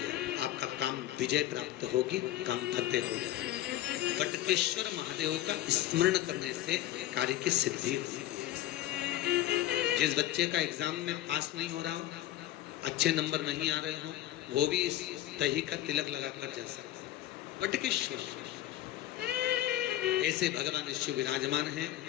आपका काम विजय प्राप्त होगी, काम फतेह हो जाए। बटकेश्वर महादेव का स्मरण करने से कार्य की सिद्धि होती है। जिस बच्चे का एग्जाम में पास नहीं हो रहा हो, अच्छे नंबर नहीं आ रहे हो, वो भी इस दही का तिलक लगाकर जा सकता है। बटकेश्वर ऐसे भगवान शिव विराजमान हैं।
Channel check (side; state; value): right; quieter; 13.9 dB